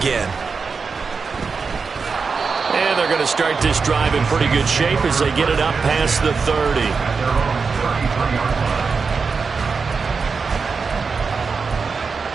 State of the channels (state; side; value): quieter; left; 5.0 dB